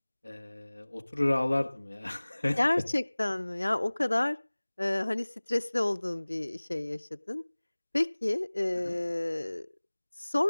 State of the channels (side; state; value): both; inverted; correlation -1.00